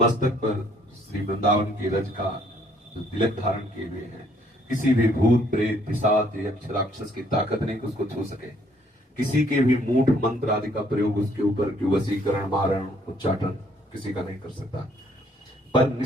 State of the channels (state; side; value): normal; both; correlation 0.65